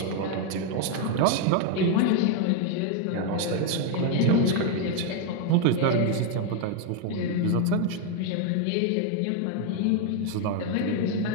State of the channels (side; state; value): both; different; correlation 0.01